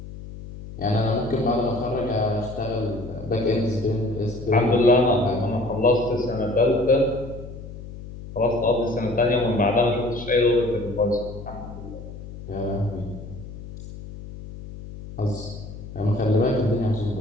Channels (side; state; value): left; noise; hum, 13 dB below the sound